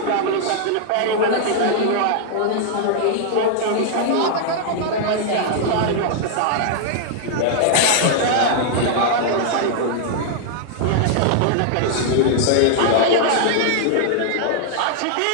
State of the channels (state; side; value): different; both; correlation -0.01